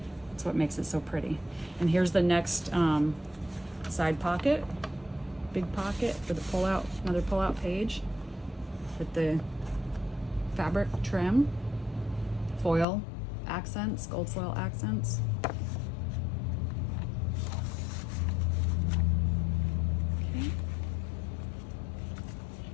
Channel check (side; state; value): right; drops out; at 12.9 s